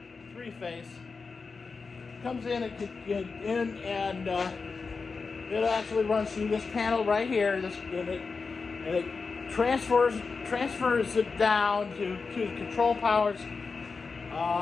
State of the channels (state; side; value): quieter; right; 4.6 dB